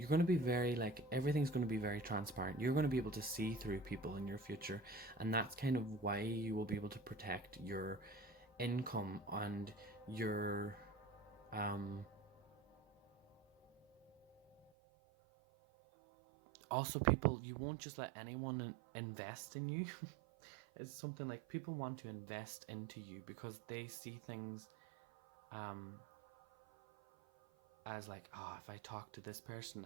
going to be very, like, everything's going to be very transparent. You're going to be able to see through people in your future. And that's kind of why you will be able to protect your income and your, also people, you won't just let anyone invest in you. It's something like people want to invest into you because they see things as like, oh, if I talk to this person,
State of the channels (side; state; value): left; drops out; at 14.7 s